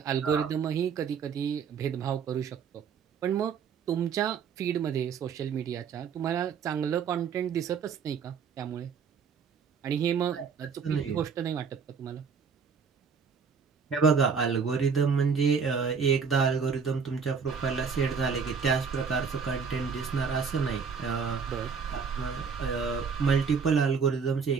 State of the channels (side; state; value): left; quieter; 6.0 dB